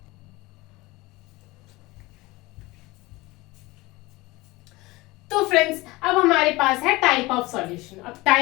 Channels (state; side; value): quieter; right; 21.3 dB